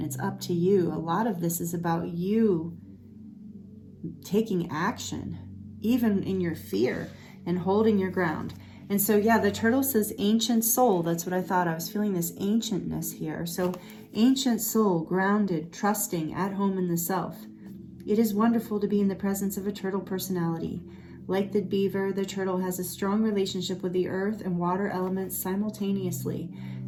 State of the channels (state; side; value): identical; both; correlation 1.00